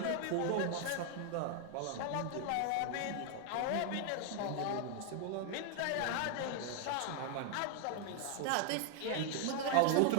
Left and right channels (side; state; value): both; different; correlation 0.00